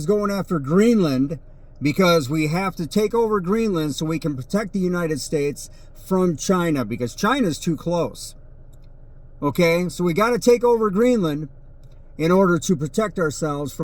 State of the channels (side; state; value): both; identical; correlation 1.00